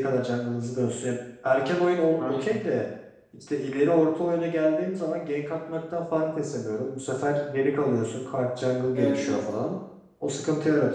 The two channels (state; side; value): identical; both; correlation 1.00